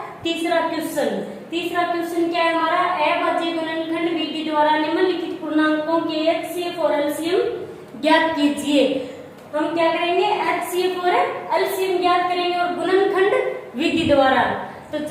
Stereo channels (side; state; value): both; identical; correlation 1.00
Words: तीसरा क्वेश्चन। तीसरा क्वेश्चन क्या है हमारा, अभाज्य गुणनखंड विधि द्वारा निम्नलिखित पूर्णांकों के एचसीएफ और एलसीएम ज्ञात कीजिए। हम क्या करेंगे, एचसीएफ और एलसीएम ज्ञात करेंगे और गुणनखंड विधि द्वारा। तो